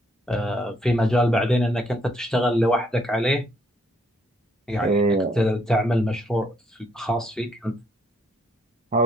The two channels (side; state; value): both; normal; correlation 0.70